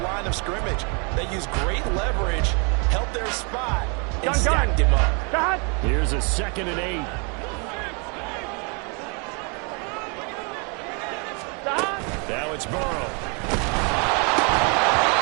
line of scrimmage. They used great leverage, held their spot, and stacked him up. Here's a 2nd and 8. Now it's Burrow.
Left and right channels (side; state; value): left; quieter; 35.0 dB